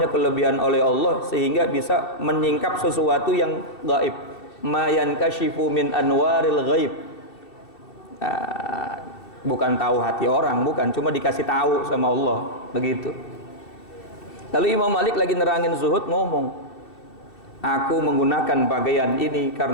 kelebihan oleh Allah sehingga bisa menyingkap sesuatu yang gaib. Ma yankashifu min anwaril ghaib. Bukan tahu hati orang, bukan, cuma dikasih tahu sama Allah, begitu. Lalu Imam Malik lagi nerangin zuhud ngomong, aku menggunakan pakaian ini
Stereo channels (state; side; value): late; right; 2.7 ms